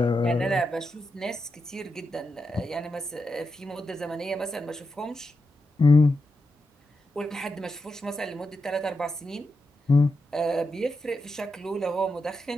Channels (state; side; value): normal; both; correlation 0.87